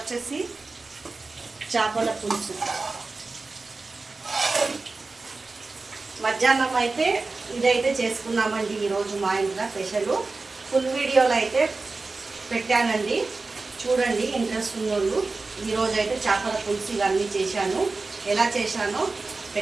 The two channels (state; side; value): quieter; left; 3.7 dB